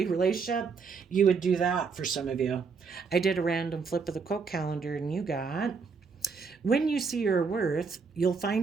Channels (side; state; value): left; quieter; 5.2 dB